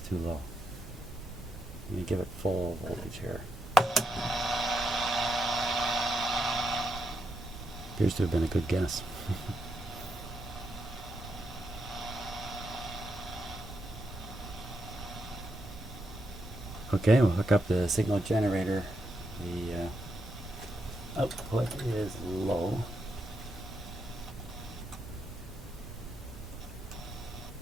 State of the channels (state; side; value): normal; both; correlation 0.81